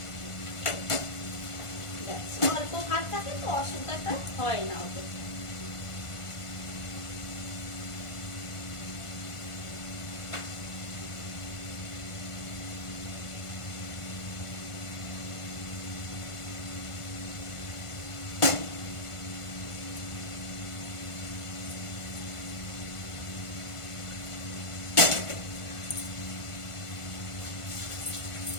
অল্প ভাত থাকে তো অসুবিধাটা হয় না ওদের।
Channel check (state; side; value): late; right; 1.5 ms